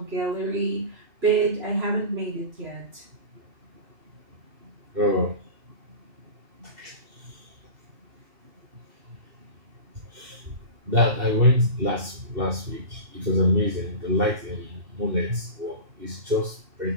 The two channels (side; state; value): left; late; 2.7 ms